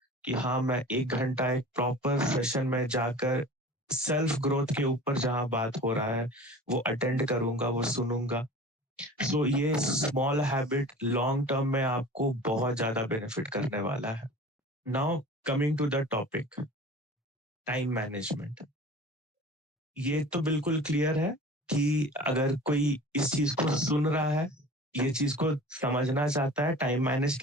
कि हाँ मैं 1 घंटा एक प्रॉपर सेशन में जाकर सेल्फ ग्रोथ के ऊपर जहाँ बात हो रहा है वो अटेंड करूंगा, वो सुनूंगा। सो ये स्मॉल हैबिट लॉन्ग टर्म में आपको बहुत ज्यादा बेनिफिट करने वाला है। Now coming to the topic, time management. ये तो बिल्कुल क्लियर है कि अगर कोई इस चीज को सुन रहा है, ये चीज को समझना चाहता है टाइम मैनेज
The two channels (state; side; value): normal; both; correlation 0.40